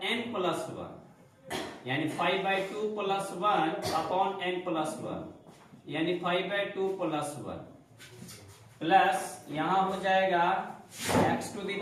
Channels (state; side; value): identical; both; correlation 1.00